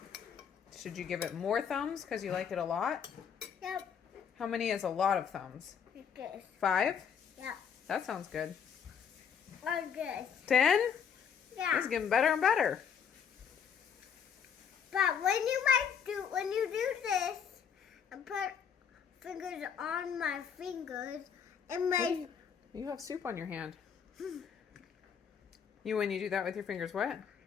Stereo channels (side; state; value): right; quieter; 7.3 dB